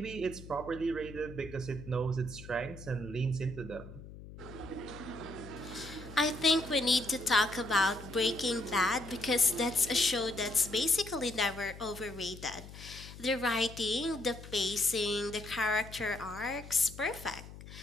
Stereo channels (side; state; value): left; noise; hum, 15 dB below the sound